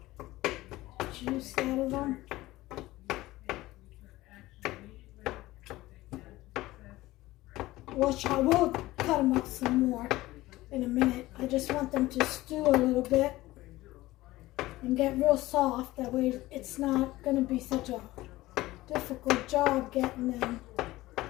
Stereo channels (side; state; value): right; quieter; 17.8 dB